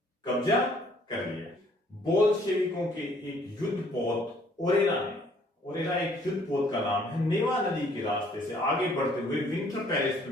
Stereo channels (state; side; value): normal; both; correlation 0.61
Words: कब्जा कर लिया। बोल्शेविकों के एक युद्ध पोत ओरेरा एक युद्ध पोत का नाम है, नेवा नदी के रास्ते से आगे बढ़ते हुए विंटर पैलेस